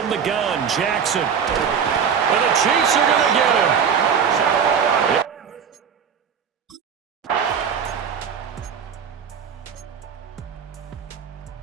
the gun, Jackson. And the Chiefs are going to get him.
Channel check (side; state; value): left; quieter; 7.2 dB